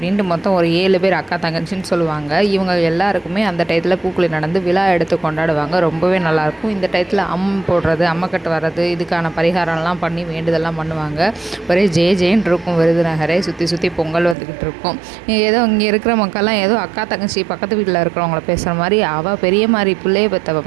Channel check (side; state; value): left; drops out; at 14.4 s